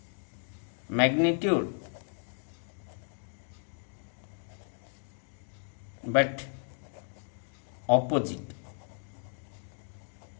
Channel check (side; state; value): right; silent; 55 dB below the other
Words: magnitude but opposite